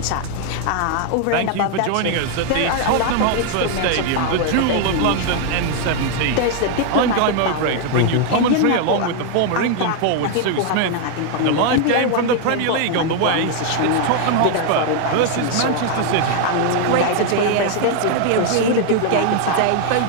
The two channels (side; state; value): both; different; correlation 0.00